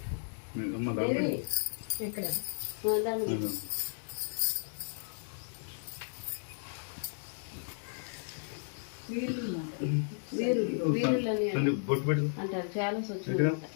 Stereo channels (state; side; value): silent; right; digital silence